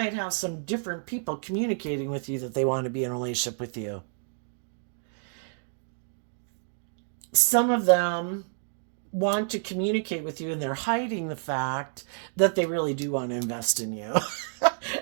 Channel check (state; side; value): silent; left; digital silence